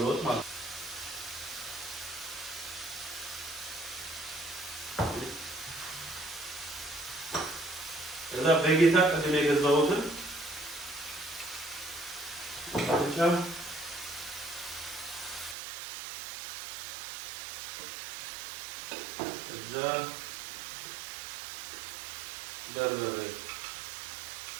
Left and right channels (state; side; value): drops out; left; at 15.6 s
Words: ለውጥ ማለት ነው። እዛ በጌታ ቅድም የገዛሁትን ብቻ እዛ በርበሬ